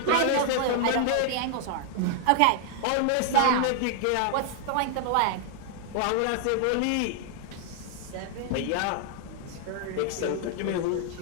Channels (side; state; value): both; different; correlation 0.00